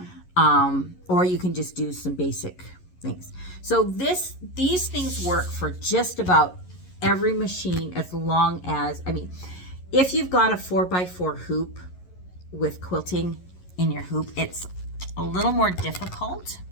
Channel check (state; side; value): late; right; 11 ms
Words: Or you can just do some basic things. So these things work for just about every machine, as long as, I mean, if you've got a 4x4 hoop with quilting in your hoop, it's a little more difficult